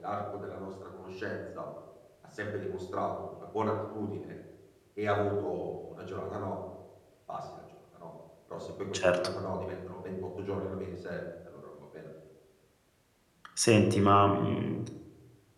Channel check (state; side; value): identical; both; correlation 1.00